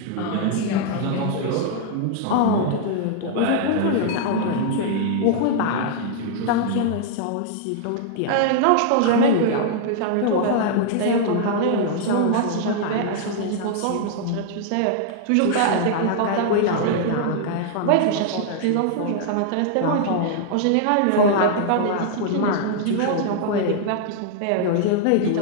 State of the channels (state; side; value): different; both; correlation -0.01